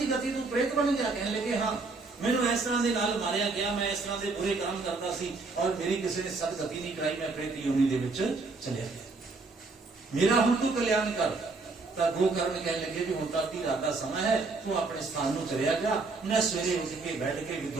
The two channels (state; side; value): quieter; left; 3.8 dB